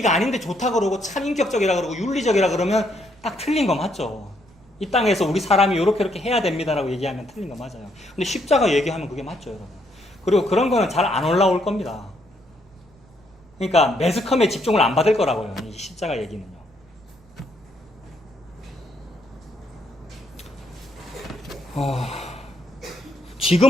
아닌데 좋다 그러고 참 인격적이라 그러고 윤리적이라 그러면 딱 틀린 거 맞죠. 이 땅에서 우리 사람이 이렇게 해야 됩니다라고 얘기하면 틀린 거 맞아요. 근데 십자가 얘기하면 그게 맞죠, 여러분. 그리고 그런 거는 잘 안 올라올 겁니다. 그러니까 매스컴에 집중을 안 받을 거라고요, 이 십자가 얘기는요.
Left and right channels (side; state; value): right; noise; rumble, 28 dB below the sound